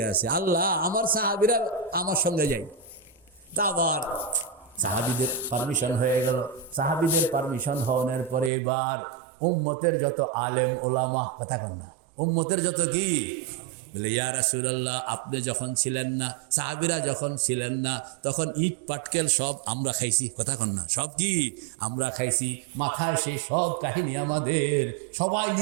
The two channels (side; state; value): left; drops out; at 8.5 s